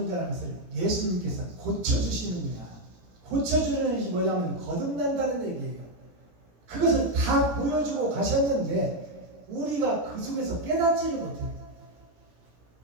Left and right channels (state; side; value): late; left; 18 ms